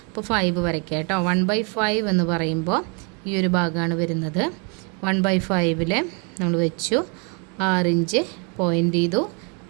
അപ്പോൾ 5 വരയ്ക്കുക കേട്ടോ. 1/5 എന്ന് പറയുമ്പോൾ ഈ ഒരു ഭാഗമാണ് വരുന്നത്. 1/5 നമ്മൾ വെച്ചു, 6 ഇഞ്ച് പോയിൻ്റ് ചെയ്തു,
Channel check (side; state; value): left; quieter; 35.3 dB